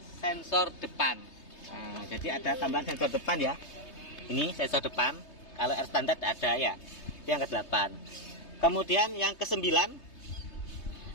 sensor depan. Nah, jadi ada tambahan sensor depan ya. Ini sensor depan. Kalau R standar ada ya. Yang ke-8. Kemudian yang ke-9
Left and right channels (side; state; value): right; late; 3.3 ms